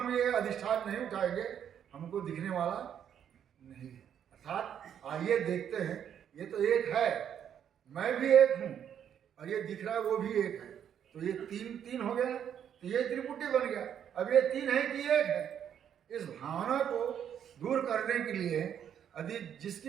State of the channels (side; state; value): left; quieter; 9.0 dB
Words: ये अधिष्ठान नहीं उठाएंगे हमको दिखने वाला नहीं है। अर्थात आइए देखते हैं, ये तो एक है, मैं भी एक हूँ और ये दिख रहा है वो भी एक है, तो ये तीन हो गया, तो ये त्रिपुटी बन गया। अब ये तीन है कि एक है, इस भावना को दूर करने के लिए यदि